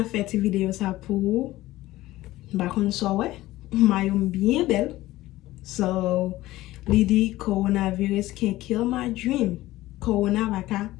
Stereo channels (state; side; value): quieter; right; 16.9 dB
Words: fait une vidéo ça pour bakon sowe. Mayom bien belle. So, l'idée coronavirus can kill my dream. Corona baka